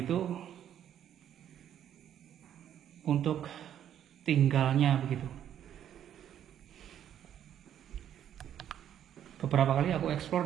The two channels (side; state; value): left; quieter; 10.2 dB